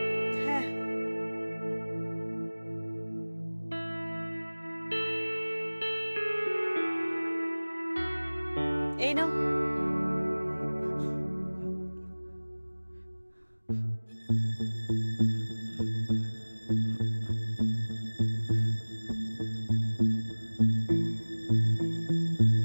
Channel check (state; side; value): inverted; both; correlation -1.00